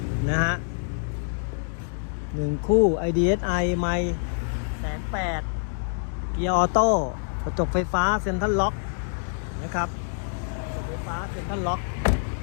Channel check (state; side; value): silent; right; digital silence